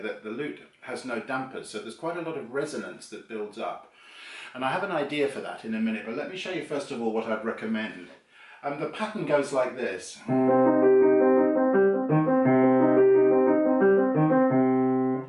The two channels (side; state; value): both; identical; correlation 1.00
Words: that the lute has no dampers, so there's quite a lot of resonance that builds up. And I have an idea for that in a minute, but let me show you first of all what I'd recommend. The pattern goes like this.